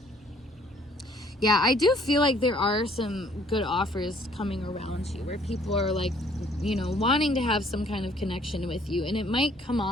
Yeah, I do feel like there are some good offers coming around you, where people are like, wanting to have some kind of connection with you. And it might come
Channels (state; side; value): normal; both; correlation 0.60